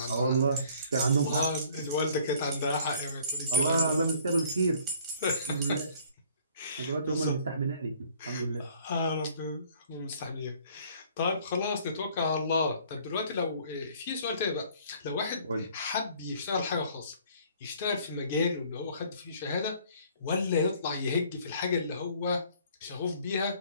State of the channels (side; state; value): both; inverted; correlation -0.56